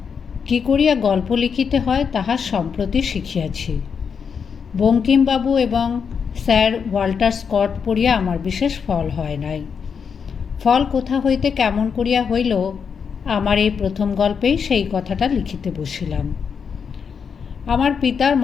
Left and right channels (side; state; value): right; quieter; 6.4 dB